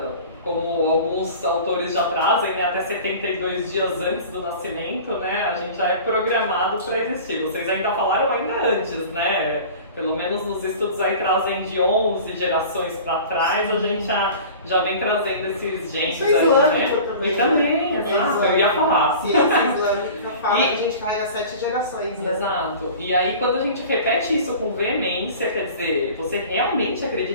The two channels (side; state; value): both; inverted; correlation -0.40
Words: Como alguns autores já trazem, né, até 72 dias antes do nascimento, né, a gente já é programado para existir. Vocês ainda falaram ainda antes, né? Pelo menos nos estudos aí trazem de 11 gerações para trás, a gente já vem trazendo esses genes Isso é aí, islâmico né? também. E também, exato, eu ia falar. Ciência islâmica fala que a gente carrega 7 gerações. Né? Exato. E aí quando a gente repete isso com veemência, quer dizer, você realmente